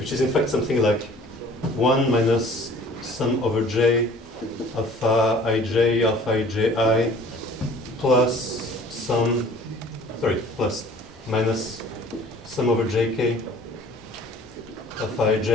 is in fact something like 1 minus sum over j alpha iji plus plus minus sum over jk alpha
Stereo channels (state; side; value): normal; both; correlation 0.50